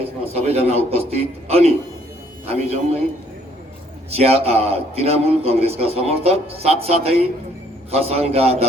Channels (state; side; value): normal; both; correlation 0.64